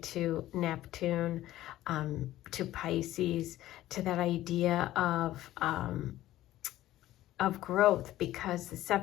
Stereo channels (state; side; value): quieter; right; 14.7 dB